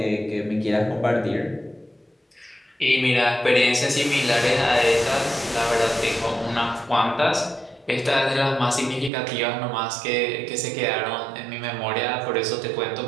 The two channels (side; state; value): left; drops out; at 9.1 s